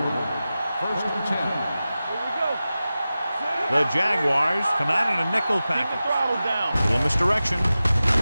line. First and 10. Here we go. The Jaguars come out in a nickel Keep the package. throttle down. Little misdirection.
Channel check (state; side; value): inverted; both; correlation -0.95